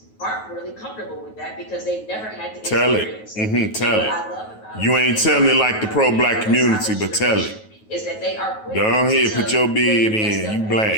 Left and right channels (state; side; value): late; right; 9.3 ms